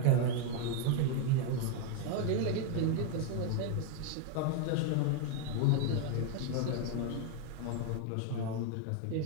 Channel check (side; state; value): both; different; correlation 0.01